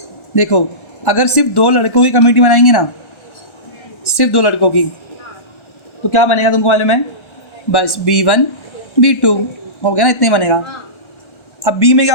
देखो अगर सिर्फ 2 लड़कों की कमेटी बनाएंगे ना, सिर्फ 2 लड़कों की, तो क्या बनेगा तुमको मालूम है? बस B1 B2 हो गया ना, इतने बनेगा। अब B में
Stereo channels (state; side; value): late; right; 1.3 ms